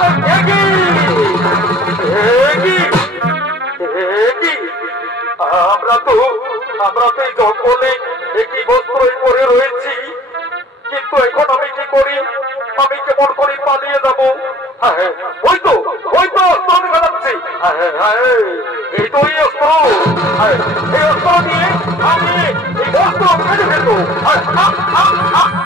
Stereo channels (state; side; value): normal; both; correlation 0.50